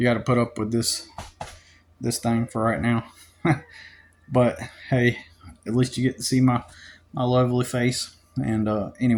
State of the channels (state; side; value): identical; both; correlation 1.00